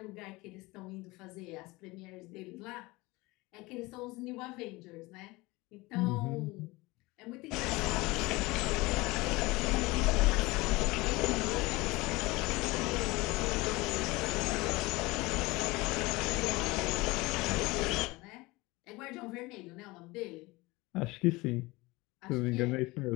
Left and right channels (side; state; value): right; quieter; 22.4 dB